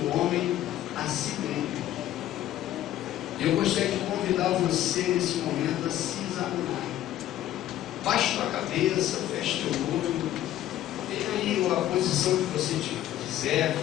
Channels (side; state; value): right; quieter; 13.0 dB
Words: homem a si mesmo. Eu gostaria de convidar você nesse momento a se examinar. Baixe a cabeça, feche teu olho, tenha aí a posição que você quiser,